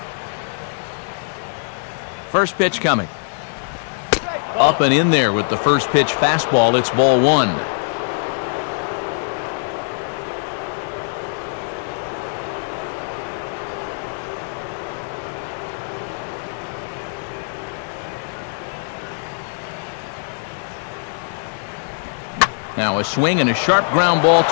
First pitch coming. Up and in there with the first pitch fastball. It's ball one. Now a swing and a sharp ground ball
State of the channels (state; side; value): silent; right; 64 dB below the other